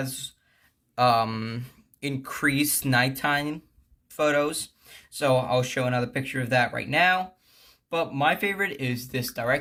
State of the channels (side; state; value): both; identical; correlation 1.00